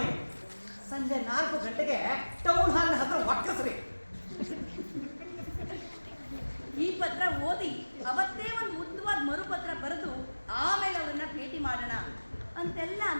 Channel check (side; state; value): both; inverted; correlation -1.00